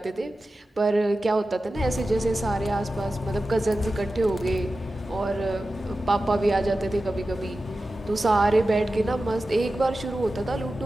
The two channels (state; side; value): normal; both; correlation 0.94